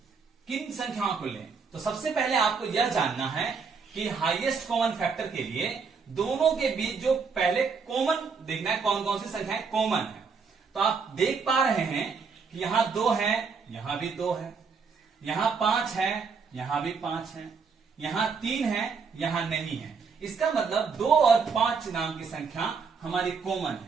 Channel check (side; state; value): left; quieter; 5.4 dB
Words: किन संख्याओं को लें? तो सबसे पहले आपको यह जानना है कि हाईएस्ट कॉमन फैक्टर के लिए दोनों के बीच जो पहले कॉमन देखना है, कौन कौन सी संख्याएं कॉमन है। तो आप देख पा रहे हैं कि यहां 2 है, यहां भी 2 है, यहां 5 है, यहां भी 5 है, यहां 3 है, यहां नहीं है। इसका मतलब 2 और 5 नाम की संख्या हमारी कॉमन